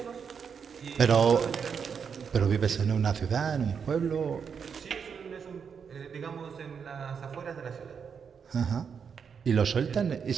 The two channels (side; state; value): left; quieter; 6.6 dB